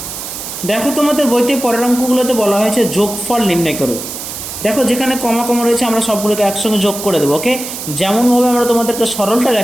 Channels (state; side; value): noise; right; hiss, 8 dB below the sound